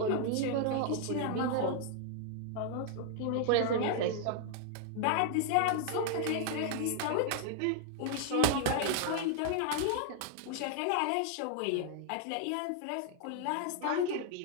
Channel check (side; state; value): both; different; correlation 0.00